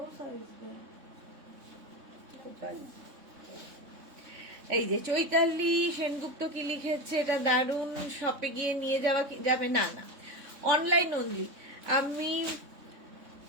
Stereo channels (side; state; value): left; late; 3.6 ms